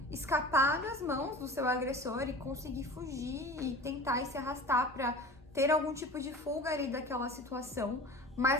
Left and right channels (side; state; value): both; normal; correlation 0.37